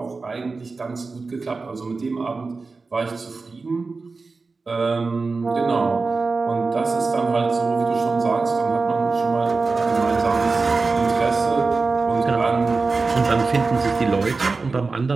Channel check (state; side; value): quieter; left; 4.1 dB